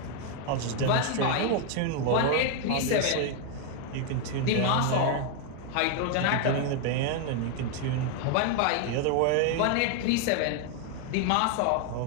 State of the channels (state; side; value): different; both; correlation 0.00